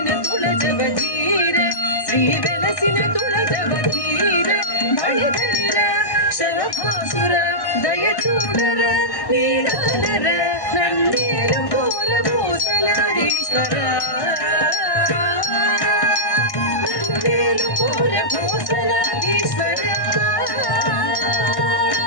తుళజవధీర శ్రీ వెలసిన తుళజవధీర బళిధరిర శరభాసుర దయచూడర నీలాలర నన్నేలు కోర భూసలారీశ్వర నన్నేలు కోర భూసలారీశ్వర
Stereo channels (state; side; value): late; right; 1.1 ms